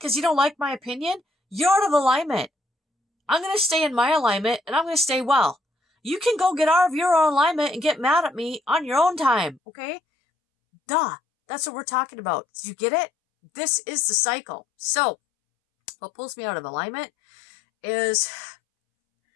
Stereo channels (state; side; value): drops out; right; at 9.6 s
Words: you don't like my opinion, you're out of alignment. I'm going to stay in my alignment and I'm going to stay well. You can go get out of your own alignment and get mad at me on your own time, okay? Duh. That's what we're talking about. Do you get it? This is the cycle. So, what pulls me out of alignment is